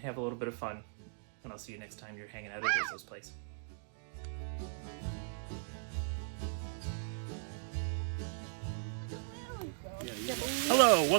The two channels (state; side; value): silent; left; digital silence